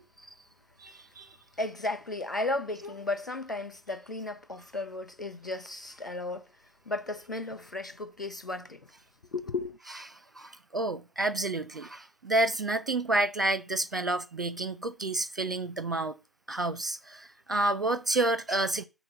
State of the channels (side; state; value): both; normal; correlation 0.51